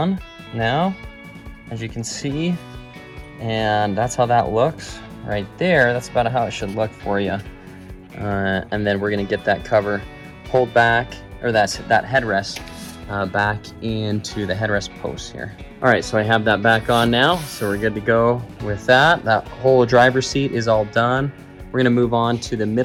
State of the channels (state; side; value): identical; both; correlation 1.00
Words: now, as you can see. And that's how that looks right there. That's about how it should look for you. And then we're gonna get that cover pulled back, or that headrest back into the headrest post here. All right, so I have that back on now, so we're good to go with that. That whole driver's seat is all done. We're gonna move on to the